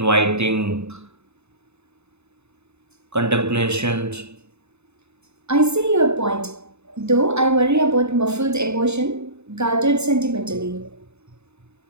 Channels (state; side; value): late; left; 0.81 ms